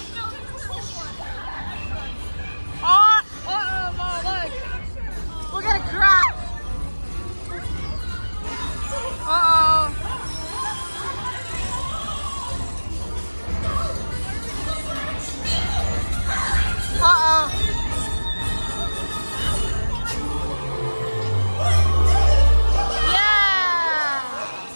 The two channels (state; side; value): inverted; both; correlation -1.00